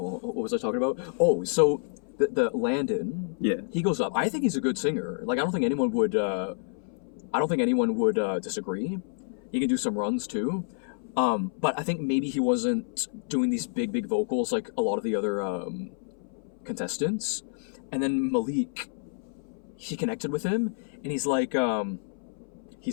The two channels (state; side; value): silent; right; 59 dB below the other